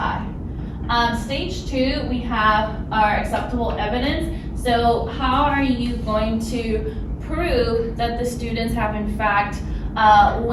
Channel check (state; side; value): identical; both; correlation 1.00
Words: Stage 2, we have our acceptable evidence. So how are you going to prove that the students have in fact